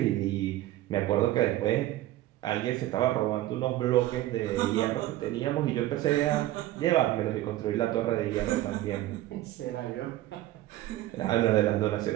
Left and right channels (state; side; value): quieter; left; 15.1 dB